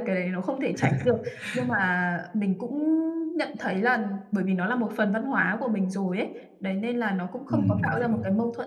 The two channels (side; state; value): both; identical; correlation 1.00